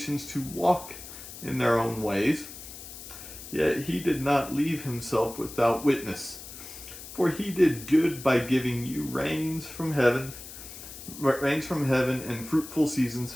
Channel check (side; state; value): left; noise; hiss, 13 dB below the sound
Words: to walk in their own ways, yet he did not leave himself without witness. For he did good by giving you rains from heaven and fruitful seasons,